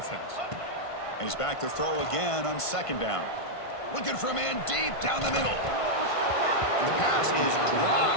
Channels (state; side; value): late; right; 1.5 ms